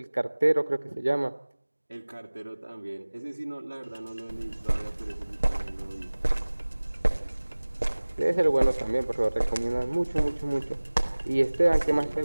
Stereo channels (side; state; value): both; inverted; correlation -1.00